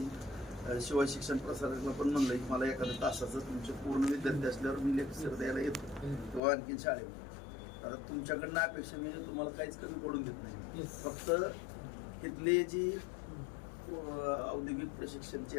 शिवाय शिक्षण प्रसारकला पण म्हणलं की मला एखाद्या तासाचं तुमचे पूर्ण विद्यार्थी असल्यावर मी लेक्चर द्यायला येतो किंवा आणखीन शाळेमध्ये. आता तुमच्याकडनं अपेक्षा म्हणजे तुम्हाला काहीच कमी पडून देत नाही. फक्त इथले जी औद्योगिक प्रशिक्षणचे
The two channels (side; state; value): right; drops out; at 6.4 s